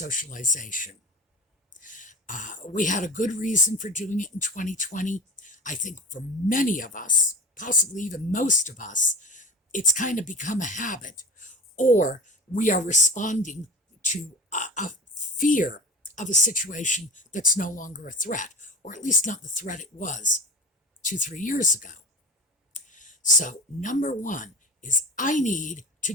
We had a good reason for doing it in 2020. I think for many of us, possibly even most of us, it's kind of become a habit, or we are responding to a fear of a situation that's no longer a threat, or at least not the threat it was 2-3 years ago. So number 1 is I need to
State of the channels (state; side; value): normal; both; correlation 0.34